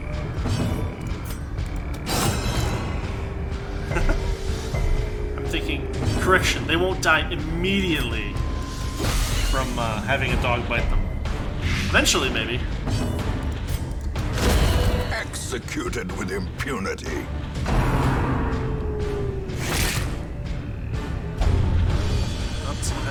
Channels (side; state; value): both; identical; correlation 1.00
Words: I'm thinking, correction, they won't die immediately from having a dog bite them. Eventually, maybe. Executed with impunity. Oh, someone